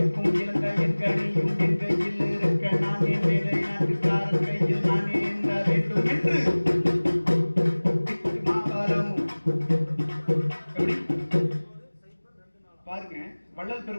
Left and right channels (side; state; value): both; inverted; correlation -1.00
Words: இரண்டையும் கணியும் என் கையில் இருக்க நான் என் வேலை நாட்டுக்காரன் கையில் நான் ஏந்த வேண்டும் என்று பாருங்க வள்ளல்